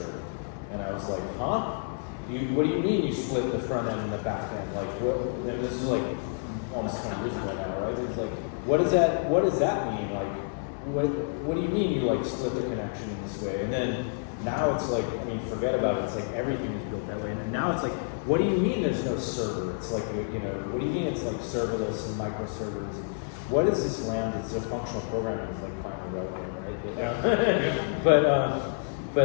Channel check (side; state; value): right; silent; 59 dB below the other